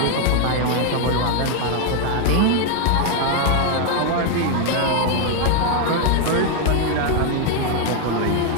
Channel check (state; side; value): different; both; correlation 0.01